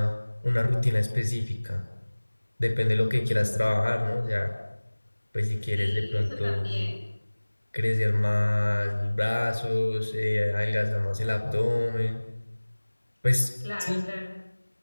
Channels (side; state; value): both; inverted; correlation -1.00